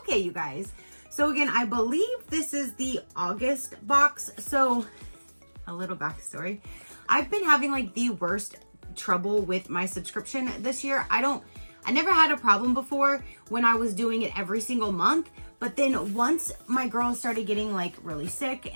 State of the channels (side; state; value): both; inverted; correlation -1.00